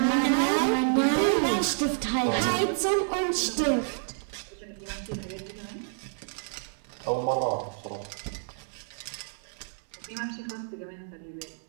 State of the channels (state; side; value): silent; left; digital silence